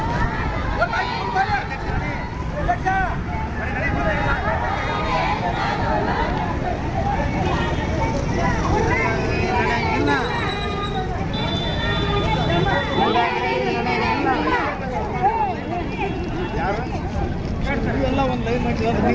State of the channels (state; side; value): identical; both; correlation 1.00